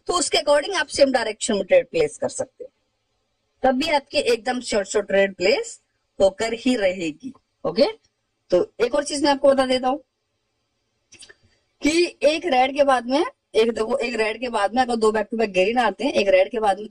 तो उसके अकॉर्डिंग आप सेम डायरेक्शन में ट्रेड प्लेस कर सकते हैं, तब भी आपकी एकदम शॉर्ट ट्रेड प्लेस होकर ही रहेगी। ओके, तो एक और चीज मैं आपको बता देता हूं कि एक रेड के बाद में, एक देखो एक रेड के बाद में अगर दो बैक टू बैक ग्रीन आते हैं, एक रेड के बाद में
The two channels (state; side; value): identical; both; correlation 1.00